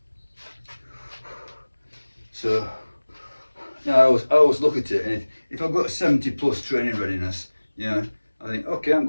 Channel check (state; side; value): inverted; both; correlation -1.00